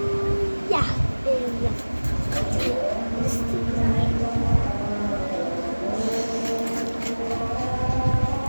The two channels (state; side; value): inverted; both; correlation -1.00